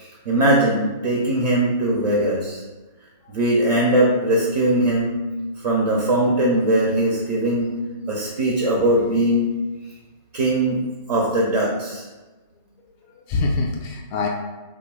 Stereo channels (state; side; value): inverted; both; correlation -0.31